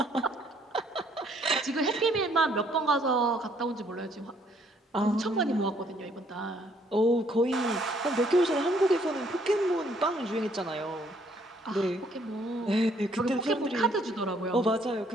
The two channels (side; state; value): both; normal; correlation 0.66